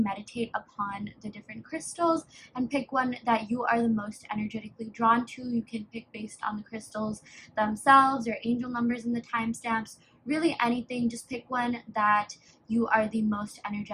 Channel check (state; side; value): identical; both; correlation 1.00